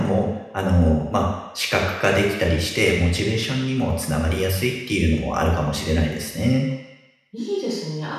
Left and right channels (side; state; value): both; identical; correlation 1.00